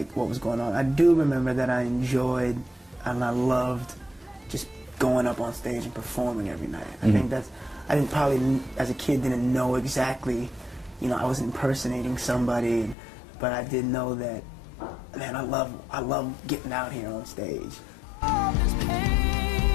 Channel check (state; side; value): drops out; right; at 13.0 s